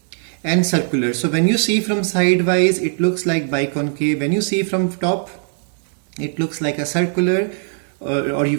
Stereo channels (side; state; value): left; silent; digital silence